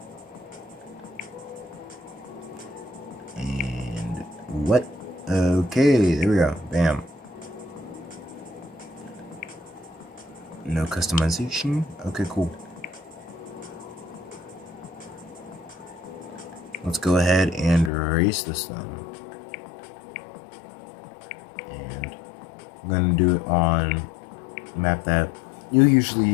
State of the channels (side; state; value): right; drops out; at 17.9 s